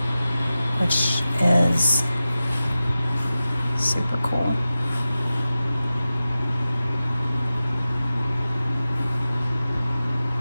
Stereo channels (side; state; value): both; inverted; correlation -0.94